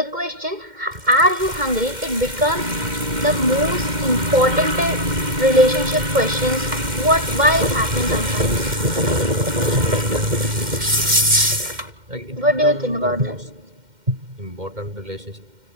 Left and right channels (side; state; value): left; late; 2.1 ms